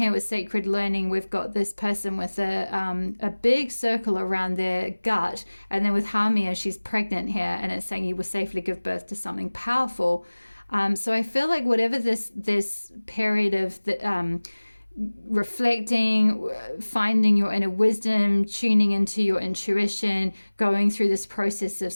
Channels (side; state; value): both; inverted; correlation -1.00